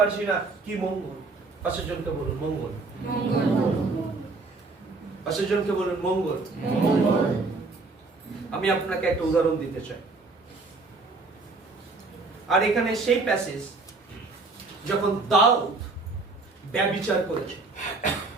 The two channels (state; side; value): quieter; left; 3.7 dB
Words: না কি মঙ্গল। পাশের জনকে বলুন মঙ্গল। পাশের জনকে বলুন মঙ্গল। আমি আপনাকে একটা উদাহরণ দিতে চাই। আর এখানে সেই প্যাসেজ যখন দাউদ ব্যভিচার করেছে,